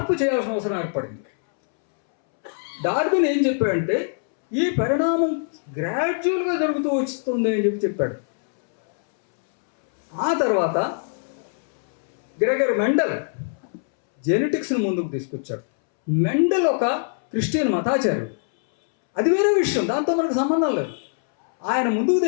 చేయాల్సిన అవసరం ఏర్పడింది. డార్విన్ ఏం చెప్పాడంటే, ఈ పరిణామం గ్రాడ్యువల్గా జరుగుతూ వస్తుంది అని చెప్పాడు. ఆ తర్వాత గ్రెగర్ మెండల్ జెనెటిక్స్ని ముందుకు తీసుకొచ్చాడు. మెండల్ ఒక క్రిస్టియన్ మతాచార్యుడు, అది వేరే విషయం, దాంతో మనకు సంబంధం లేదు. ఆయన ముందుకు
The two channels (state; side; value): silent; right; 64 dB below the other